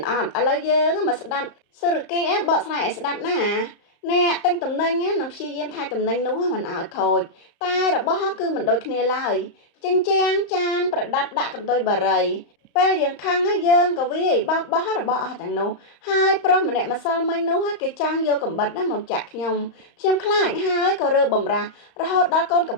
អត់ឥឡូវយើងមកស្ដាប់សេរកេបកស្រាយឲ្យស្ដាប់ណាអ្នកទិញតំណែងនឹងព្យាយាមថែតំណែងនោះមិនឲ្យខូចតែរបស់គឺមិនដូចគ្នាឡើយចិញ្ចាំងចានប្រដាប់ដាក់កន្ទុយបារីពេលយើងខឹងយើងក៏វាយបោកបោះរបស់អស់ទាំងនោះហើយប្រុសម្នាក់ម្សិលមិញនោះគេចាំងយកកំបិតមកចាក់ខ្ញុំខ្លាចហើយក៏រើបំរាស់រហូតដល់កូនកំ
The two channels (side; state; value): right; late; 35 ms